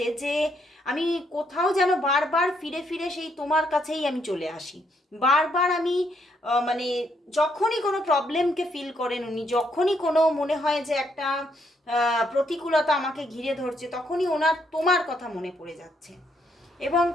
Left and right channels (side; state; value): both; normal; correlation 0.73